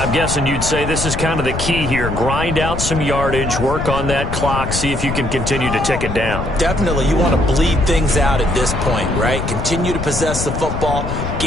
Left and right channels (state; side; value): noise; left; rumble, 5 dB below the sound